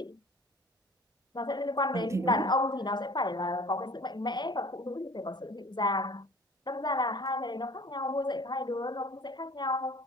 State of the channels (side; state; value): both; normal; correlation 0.46